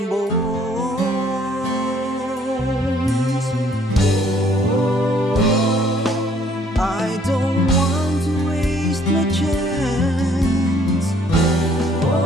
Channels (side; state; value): both; normal; correlation 0.62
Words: bones. I don't want to waste my chance.